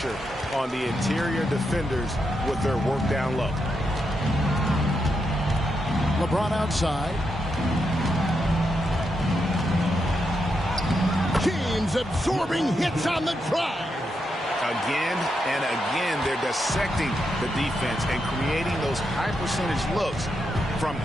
on the interior defenders with their work down low. LeBron outside. James absorbing hits on the drive. Again and again, they're dissecting the defense and creating those high-percentage looks from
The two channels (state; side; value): normal; both; correlation 0.83